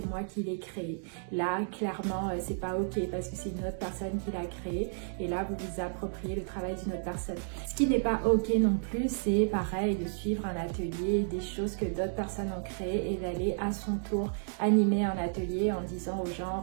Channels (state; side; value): silent; left; digital silence